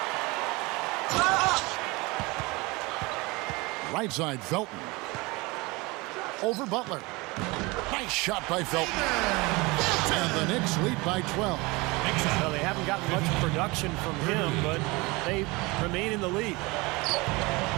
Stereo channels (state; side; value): quieter; left; 24.3 dB